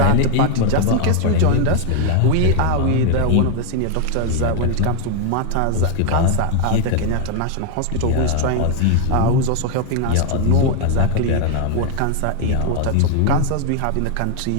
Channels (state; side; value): different; both; correlation 0.00